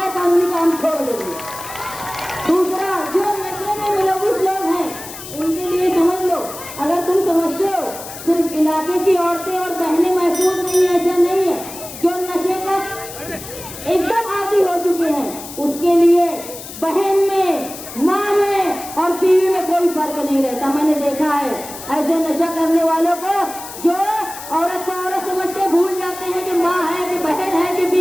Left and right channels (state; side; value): noise; left; hiss, 13 dB below the sound